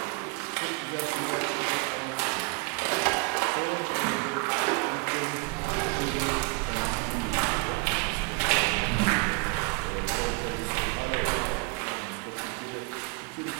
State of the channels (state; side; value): quieter; left; 30.7 dB